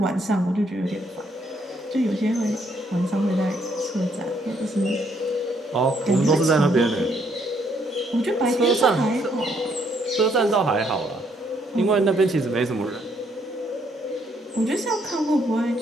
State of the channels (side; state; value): both; normal; correlation 0.70